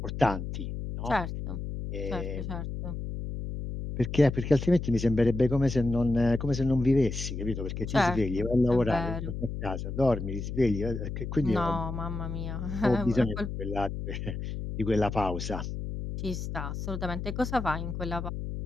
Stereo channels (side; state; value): left; noise; hum, 5 dB below the sound